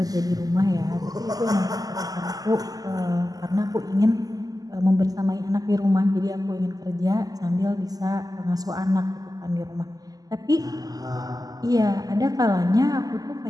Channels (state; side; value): late; left; 0.18 ms